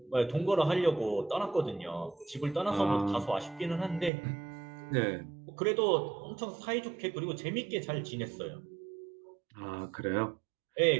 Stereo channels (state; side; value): drops out; left; at 4.1 s